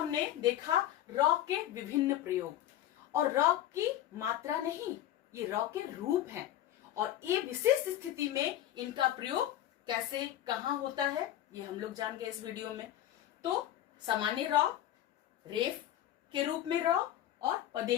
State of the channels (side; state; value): right; quieter; 12.6 dB